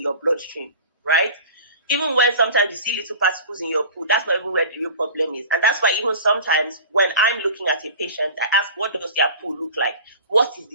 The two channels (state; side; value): inverted; both; correlation -0.39